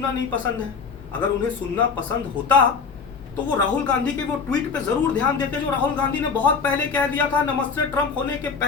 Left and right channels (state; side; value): quieter; right; 5.4 dB